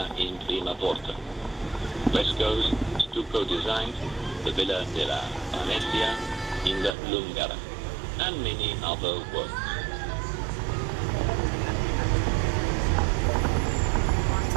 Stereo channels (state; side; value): drops out; left; at 7.0 s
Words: in Prima Porta, frescoes, stucco designs, the Villa della Venetia in the Lungara, and many other works.